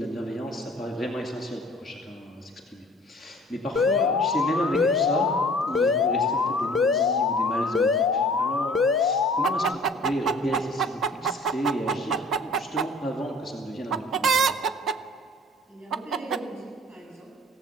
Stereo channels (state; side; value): normal; both; correlation 0.50